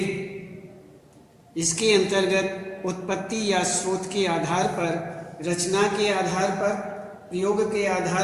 इसके अंतर्गत उत्पत्ति या स्रोत के आधार पर, रचना के आधार पर, प्रयोग के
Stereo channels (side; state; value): both; identical; correlation 1.00